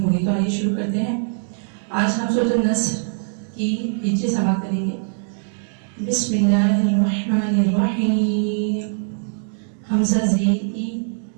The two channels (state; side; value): silent; left; 64 dB below the other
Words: होगी। तो आइए शुरू करते हैं। आज हम सूरह नस्र की हिज्जे समाप्त करेंगे। बिस्मिल्लाहिर्रहमानिर्रहीम। हमजा ज़ेर ई,